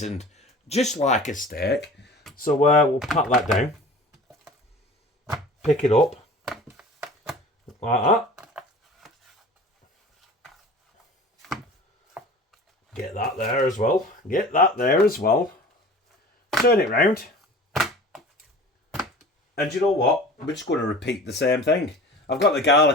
just like a steak. So we'll pat that down, pick it up like that, get that there as well. Get that there as well. Turn it round, and you know what? We're just going to repeat the same thing. I've got the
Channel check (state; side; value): normal; both; correlation 0.41